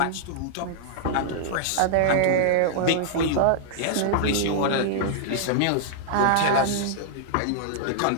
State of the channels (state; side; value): different; both; correlation -0.01